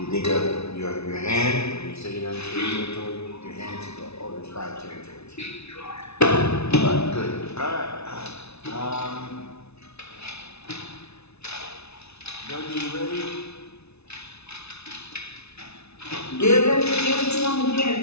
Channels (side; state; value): right; late; 0.80 ms